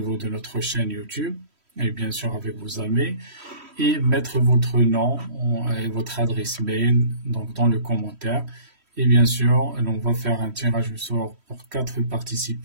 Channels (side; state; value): left; late; 3.1 ms